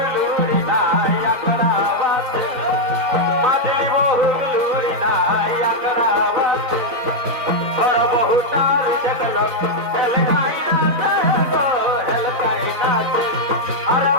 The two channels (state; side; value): late; left; 4.0 ms